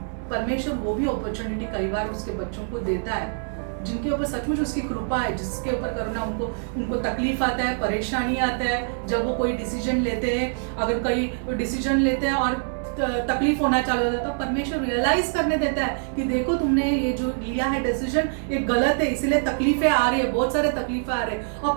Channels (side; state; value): left; silent; digital silence